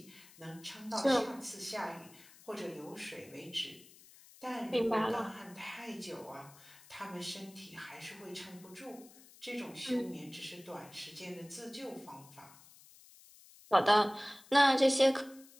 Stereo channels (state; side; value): noise; left; hiss, 22 dB below the sound